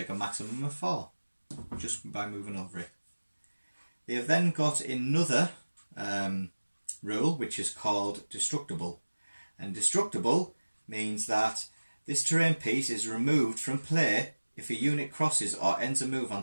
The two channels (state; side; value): inverted; both; correlation -1.00